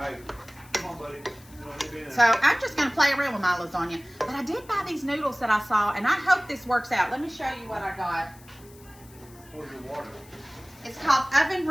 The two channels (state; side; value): noise; left; hiss, 24 dB below the sound